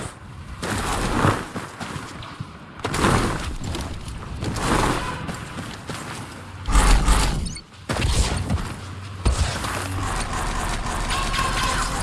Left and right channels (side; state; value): both; identical; correlation 1.00